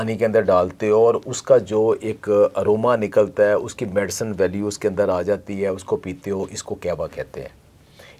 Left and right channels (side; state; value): both; identical; correlation 1.00